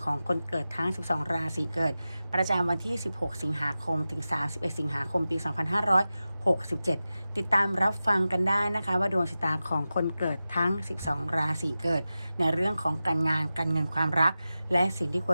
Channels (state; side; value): inverted; both; correlation -0.94